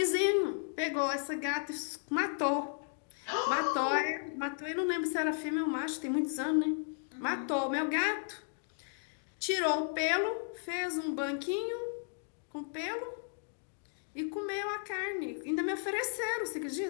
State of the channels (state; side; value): silent; right; digital silence